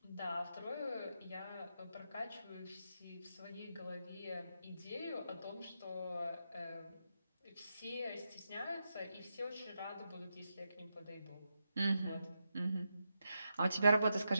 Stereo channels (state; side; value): inverted; both; correlation -0.85